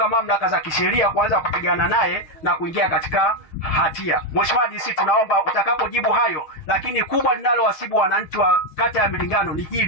mamlaka za kisheria kuanza kupigana naye na kuingia katika hatia. Mheshimiwa DC, tunaomba utakapojibu hayo, lakini kubwa linalowasibu wananchi wa kata ya Milingano ni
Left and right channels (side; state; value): right; late; 6.7 ms